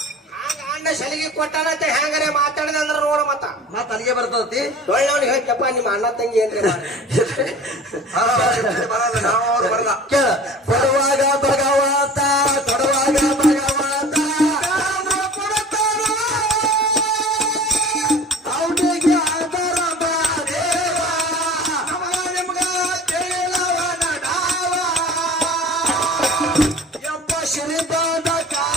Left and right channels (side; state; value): both; normal; correlation 0.42